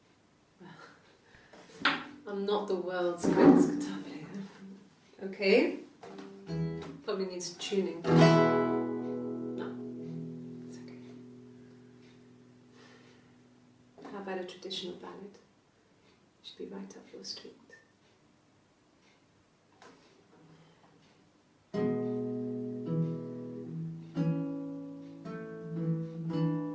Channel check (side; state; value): both; identical; correlation 1.00